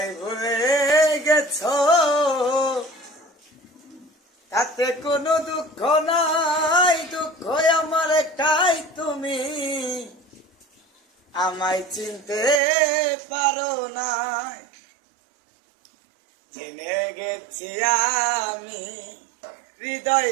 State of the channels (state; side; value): drops out; left; at 12.6 s